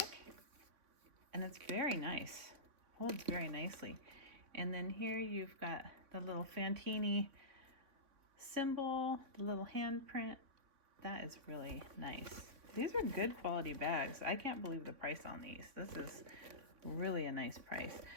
and it's very nice. Holds very nicely. And then here you've got the little Fantini symbol, the little handprint. That is really nice. These are good quality bags. I can't believe the price on these. This is really a nice price.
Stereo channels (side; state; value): left; late; 3.6 ms